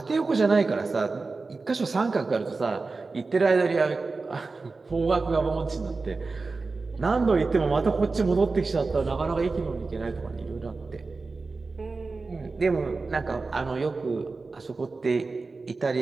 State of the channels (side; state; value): left; quieter; 3.9 dB